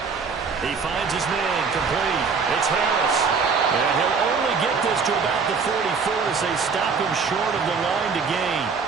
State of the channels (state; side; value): quieter; left; 5.3 dB